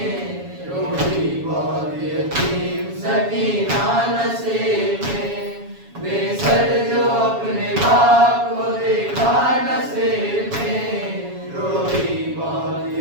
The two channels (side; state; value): left; late; 7.2 ms